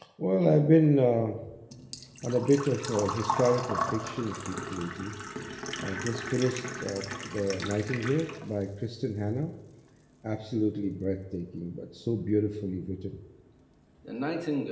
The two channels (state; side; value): identical; both; correlation 1.00